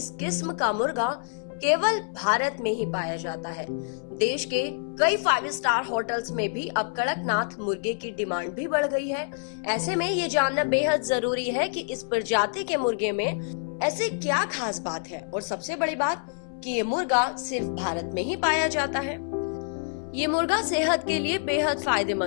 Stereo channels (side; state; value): right; silent; 60 dB below the other